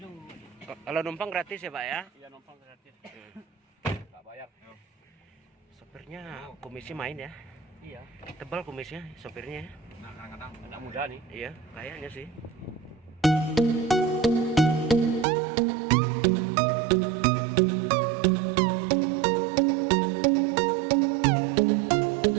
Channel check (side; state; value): left; drops out; at 15.2 s